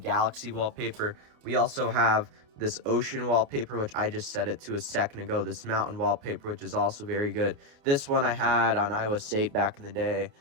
wallpaper. We also have this ocean wallpaper, which I just set it to a second ago. This mountain wallpaper, which is also very good. This one I had on iOS 8 back in the day.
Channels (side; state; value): left; late; 28 ms